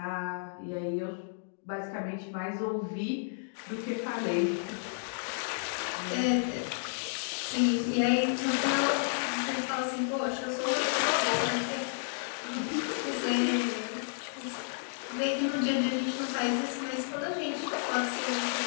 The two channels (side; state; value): right; silent; digital silence